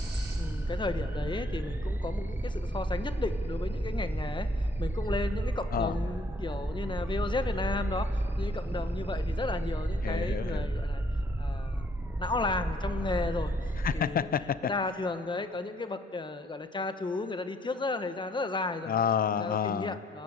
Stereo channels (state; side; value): normal; both; correlation 0.64